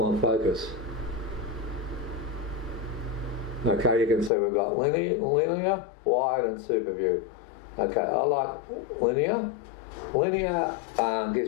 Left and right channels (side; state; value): right; drops out; at 4.3 s